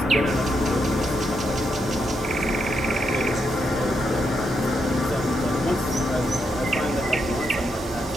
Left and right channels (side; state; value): both; normal; correlation 0.81